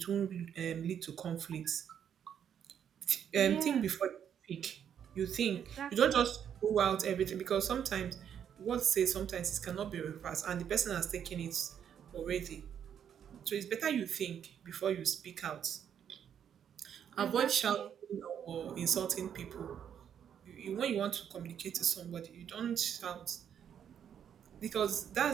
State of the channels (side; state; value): left; quieter; 8.8 dB